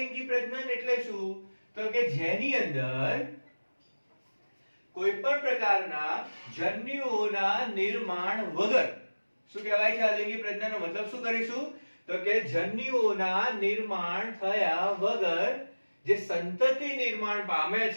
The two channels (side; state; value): both; inverted; correlation -1.00